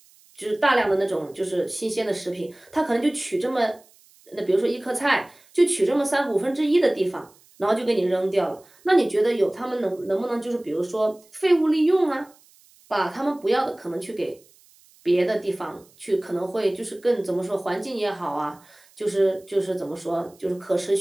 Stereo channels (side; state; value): right; noise; hiss, 29 dB below the sound